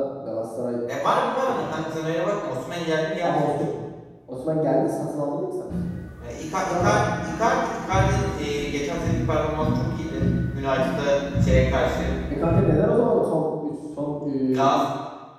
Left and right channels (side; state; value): both; identical; correlation 1.00